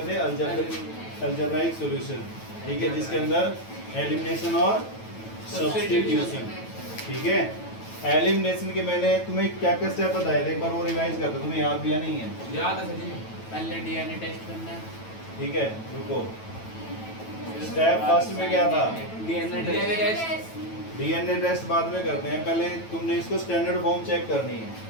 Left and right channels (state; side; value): late; right; 9.1 ms